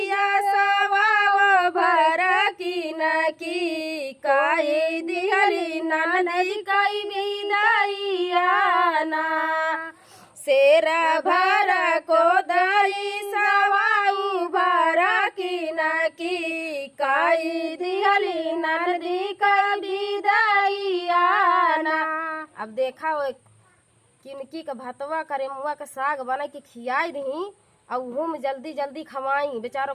सवा भर की नकी, काई दिहली ननई काई विदाइया ना। शेरा भर को दाई सवाऊ भर की नकी, काई दिहली ननदी का विदाइया ना। अब देखा वो किनकी का भतवा करे मुआ का साग बना के खियाई रही और उहो में जल्दी जल्दी खवाई, बेचारों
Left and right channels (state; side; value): identical; both; correlation 1.00